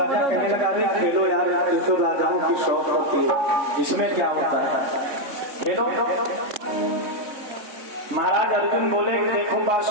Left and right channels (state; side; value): late; left; 3.6 ms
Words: कहने लगा, अरे खेलो यार, ये तो राजाओं की शौक होती है, इसमें क्या होता है, खेलो। महाराज अर्जुन बोले, देखो